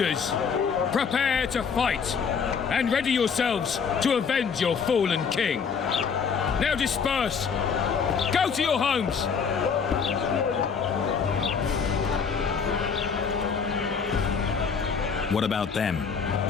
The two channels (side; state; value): right; quieter; 6.1 dB